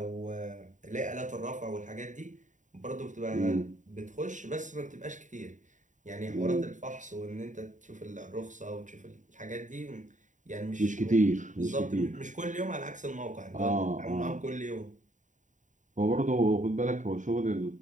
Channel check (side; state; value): left; late; 0.36 ms